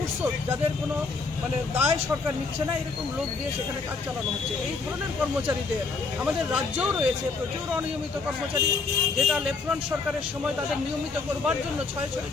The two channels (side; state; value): right; quieter; 4.3 dB